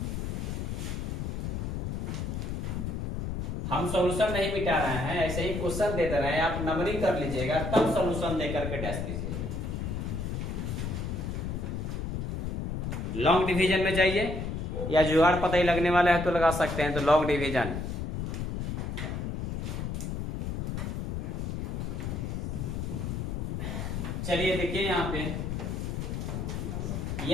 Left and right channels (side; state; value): left; noise; rumble, 3 dB below the sound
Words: हम सॉल्यूशन नहीं मिटा रहे हैं, ऐसे ही क्वेश्चन दे रहे हैं, आप नंबरिंग कर लीजिएगा तब सॉल्यूशन देकर के डैश दीजिएगा। लॉन्ग डिवीजन में जाइए, या जुगाड़ पता ही लगने वाला है तो लगा सकते हैं। तो लॉन्ग डिवीजन चलिए देखिए यहाँ पे,